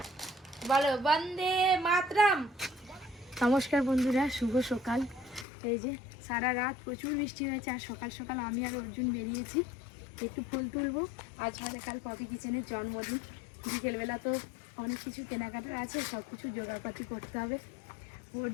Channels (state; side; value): drops out; right; at 5.5 s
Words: বলো বন্দে মাতরম। নমস্কার বন্ধুরা, শুভ সকাল। এই যে সারা রাত প্রচুর বৃষ্টি হয়েছে, আর সকাল সকাল আমি আর অর্জুন বেরিয়েছি একটু ফুল তুলবো। আজ হলে কাল পপি কিচেনের জন্মদিন। বিকেলবেলা তো অনেক কিছু কেনাকাটার আছে, সব কিছু জোগাড়পাতি করতে হবে।